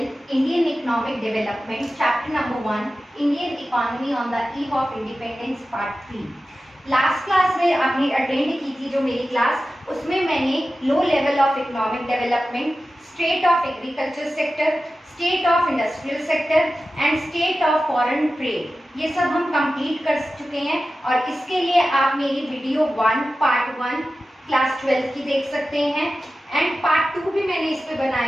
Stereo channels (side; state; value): both; normal; correlation 0.94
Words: Indian Economic Development, Chapter number 1, Indian Economy on the Eve of Independence Part 3. Last class में आपने अटेंड की थी जो मेरी क्लास, उसमें मैंने low level of economic development, state of agriculture sector, state of industrial sector and state of foreign trade ये सब हम कंप्लीट कर चुके हैं और इसके लिए आप मेरी वीडियो 1 पार्ट 1 क्लास 12 की देख सकते हैं एंड पार्ट 2 भी मैंने इस पे